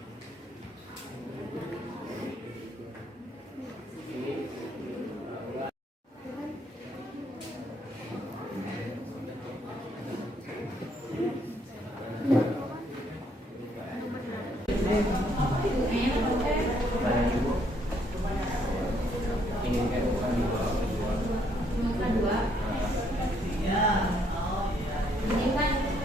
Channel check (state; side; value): normal; both; correlation 0.69